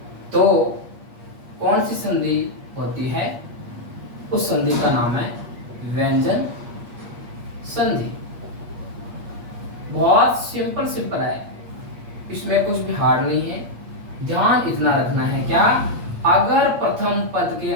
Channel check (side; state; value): left; late; 8.5 ms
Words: तो कौन सी संधि होती है? उस संधि का नाम है व्यंजन संधि। बहुत सिंपल है, इसमें कुछ भी हार्ड नहीं है। ध्यान इतना रखना है क्या? अगर प्रथम पद के